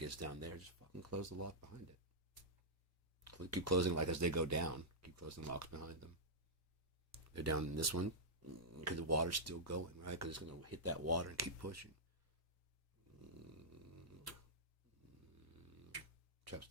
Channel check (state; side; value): normal; both; correlation -0.10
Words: down there, just fucking close the lock behind it. Keep closing like as they go down. Keep closing locks behind them. They're down in this one because the water's still going, right? Because it's going to hit that water and keep pushing. Traps